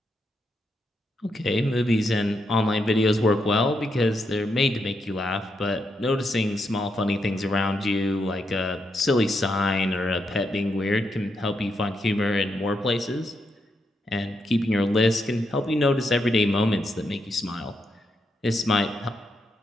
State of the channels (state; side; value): normal; both; correlation 0.81